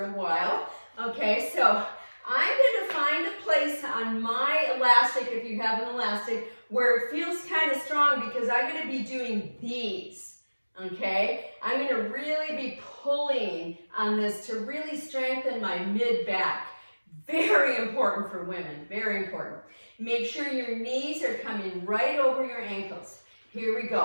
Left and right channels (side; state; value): both; inverted; correlation -1.00